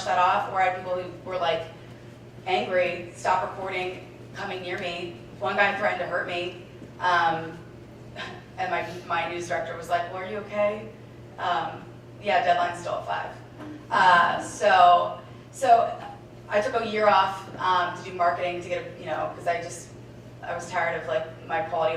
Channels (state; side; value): identical; both; correlation 1.00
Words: that off, or I had people who were angry, stop recording, coming near me. One guy threatened to hurt me, and my news director was like, well, are you okay? Yeah, deadline's still at 5. So I took a year off to do marketing to get because I was tired of my quality